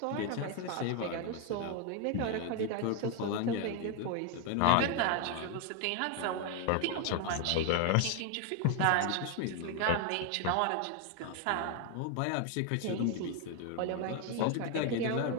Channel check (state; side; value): different; both; correlation 0.01